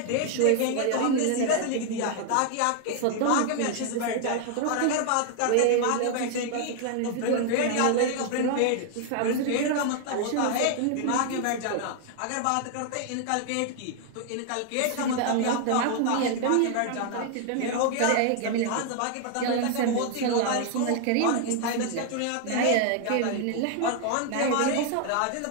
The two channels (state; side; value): different; both; correlation 0.00